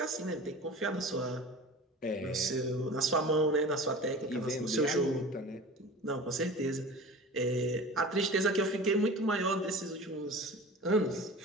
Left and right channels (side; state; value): both; normal; correlation 0.37